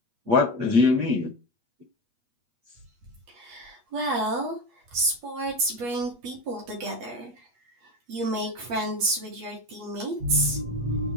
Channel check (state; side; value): late; left; 8.4 ms